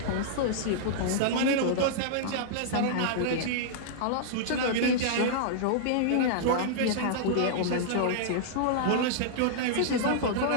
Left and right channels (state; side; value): different; both; correlation -0.02